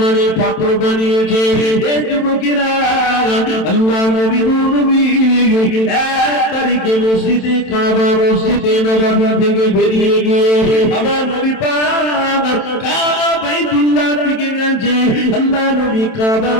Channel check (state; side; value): late; right; 27 ms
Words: পাত্র বানিয়েছে। এই যুবকেরা, আল্লাহ নবী নবী 1 তারিখে মসজিদে কাবা মসজিদে নববী থেকে বেরিয়ে গিয়ে আমার নবী পাক কাবা বাইতুল্লাহ দিকে গেছে। আল্লাহ নবী কাবা